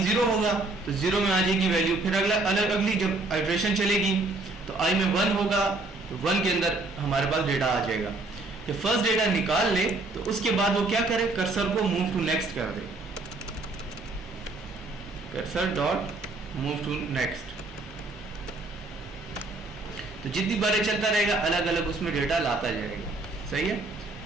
0 होगा तो 0 में आ जाएगी वैल्यू, फिर अगली जब आइट्रेशन चलेगी तो आई में 1 होगा तो 1 के अंदर हमारे पास डेटा आ जाएगा। जब फर्स्ट डेटा निकाल ले तो उसके बाद वो क्या करे, कर्सर को मूव टू नेक्स्ट कर दे, cursor dot move to next. तो जितनी बारें चलता रहेगा अलग अलग उसमें डेटा लाता जाएगा, सही है।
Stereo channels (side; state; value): left; quieter; 3.1 dB